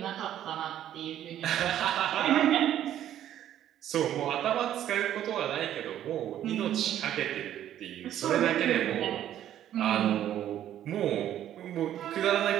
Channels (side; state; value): left; quieter; 11.4 dB